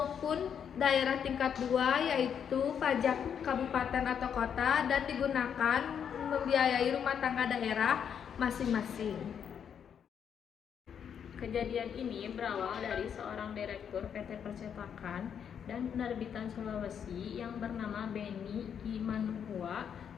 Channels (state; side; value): quieter; right; 8.0 dB